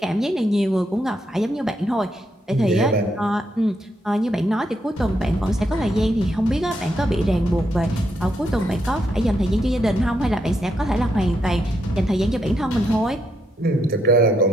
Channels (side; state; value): both; normal; correlation 0.79